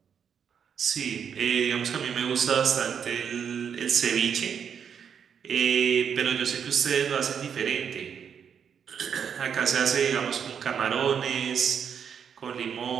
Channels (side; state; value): left; quieter; 7.5 dB